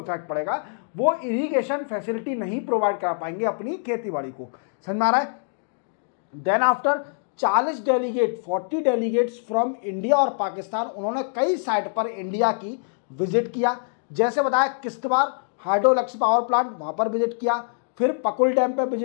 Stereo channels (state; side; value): silent; right; digital silence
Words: पड़ेगा। वो इरिगेशन फैसिलिटी नहीं प्रोवाइड कर पाएंगे अपनी खेती बाड़ी को। समझ में आ रहा है। Then after 40 delegate 40 delegates from India और पाकिस्तान, उन्होंने कई साइट पर इंडिया की विजिट किया। जैसे बताया Kishtwar hydro electric power plant, वहाँ पर विजिट किया, फिर पकुल डैम पर